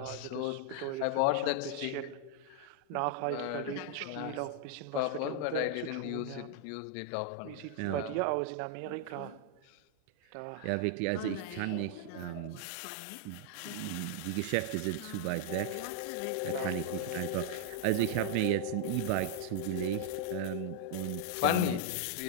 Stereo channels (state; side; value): different; both; correlation 0.00